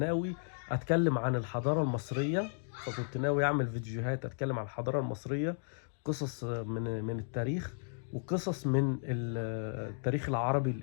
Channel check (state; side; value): silent; right; digital silence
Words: أتكلم عن الحضارة المصرية، فكنت ناوي أعمل فيديوهات أتكلم عن الحضارة المصرية، قصص من التاريخ وقصص من التاريخ العربي